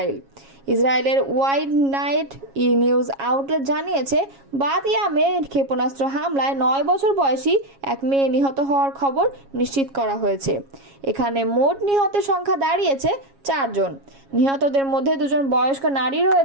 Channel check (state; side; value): late; left; 7.3 ms